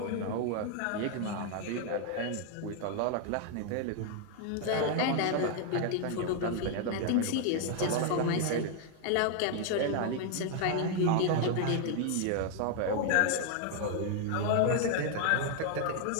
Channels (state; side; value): different; both; correlation 0.00